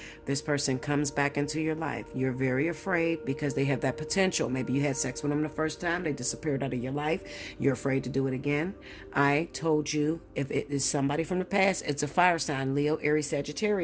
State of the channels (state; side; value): identical; both; correlation 1.00